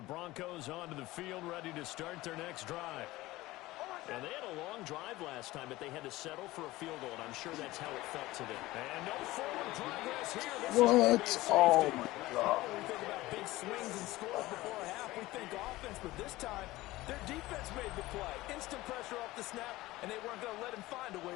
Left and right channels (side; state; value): right; quieter; 18.4 dB